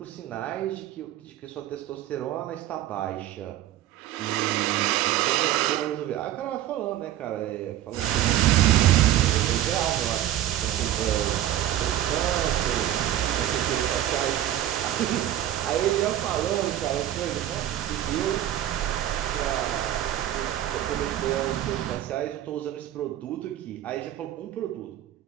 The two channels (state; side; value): quieter; left; 12.5 dB